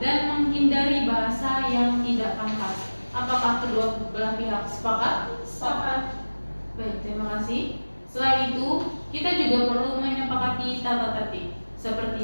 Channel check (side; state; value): both; inverted; correlation -1.00